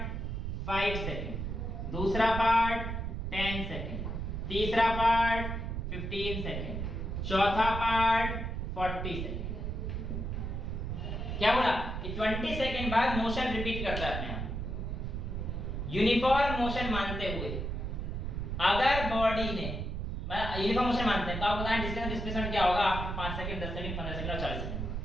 5 सेकेंड, दूसरा पार्ट 10 सेकेंड, तीसरा पार्ट 15 सेकेंड, चौथा पार्ट 40 सेकेंड। क्या बोला कि 20 सेकेंड बाद मोशन रिपीट करता है अपने आप, यूनिफॉर्म मोशन मानते हुए। अगर बॉडी ने यूनिफॉर्म मोशन मानते हैं तो आप बताएं डिस्टेंस डिस्प्लेसमेंट क्या होगा आफ्टर 5 सेकंड, 10 सेकंड, 15 सेकंड और 40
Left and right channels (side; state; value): right; noise; rumble, 3 dB below the sound